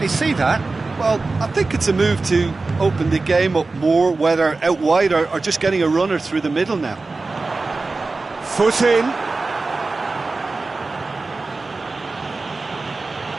see that. Well, I think it's a move to open the game up more, whether out wide or just getting a runner through the middle now. Foot in.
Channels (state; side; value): quieter; left; 3.6 dB